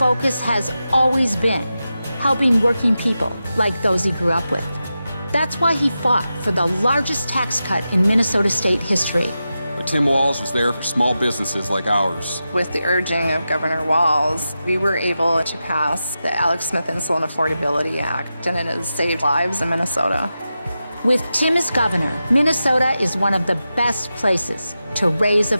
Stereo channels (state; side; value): inverted; both; correlation -0.91